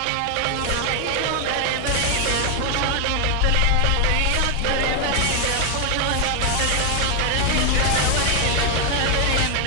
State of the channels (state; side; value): different; both; correlation 0.00